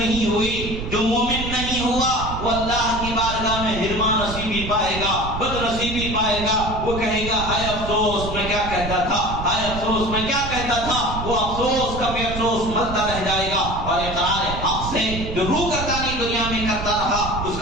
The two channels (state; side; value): noise; right; rumble, 7 dB below the sound